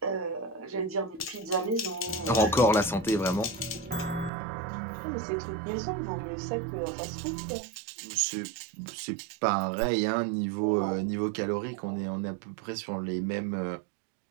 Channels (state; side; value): drops out; left; at 4.3 s